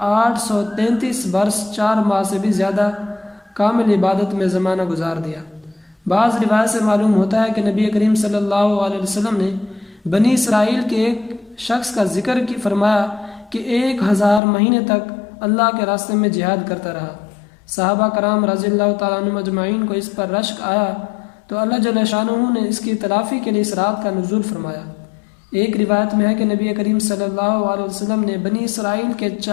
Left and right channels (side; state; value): right; drops out; at 14.4 s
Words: 833 برس 4 ماہ سے بھی زیادہ کامل عبادت میں زمانہ گزار دیا۔ بعض روایت سے معلوم ہوتا ہے کہ نبی کریم صلی اللہ علیہ وسلم نے بنی اسرائیل کے ایک شخص کا ذکر فرمایا کہ 1000 مہینے تک اللہ کے راستے میں جہاد کرتا رہا۔ صحابہ کرام رضی اللہ تعالیٰ عنہم اجمعین کو اس پر رشک آیا تو اللہ جل شانہ نے اس کی تلافی کے لیے اس رات کا نزول فرمایا۔ ایک روایت میں ہے کہ نبی کریم صلی اللہ علیہ وسلم نے بنی اسرائیل کے